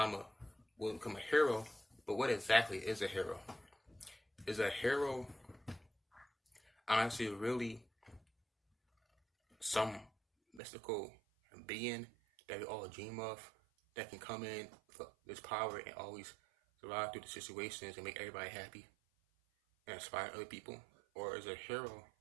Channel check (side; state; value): left; drops out; at 10.6 s